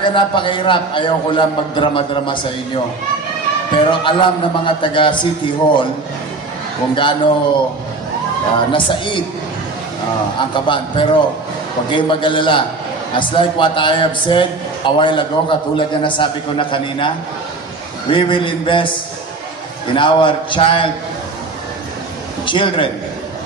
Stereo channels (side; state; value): left; quieter; 3.5 dB